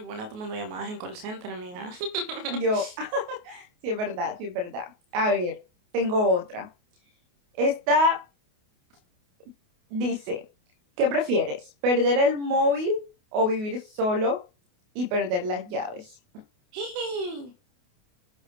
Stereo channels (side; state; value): left; late; 28 ms